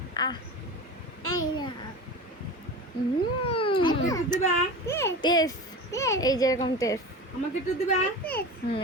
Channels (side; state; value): both; normal; correlation 0.31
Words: আহ এই না। আমাকে একটু দিবা? টেস, টেস। এই যেরকম টেস। আমাকে একটু দিবা?